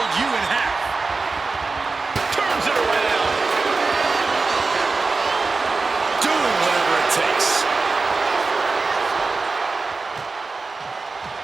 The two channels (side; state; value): left; quieter; 4.0 dB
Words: you in half. Turns it around. Doing whatever it takes.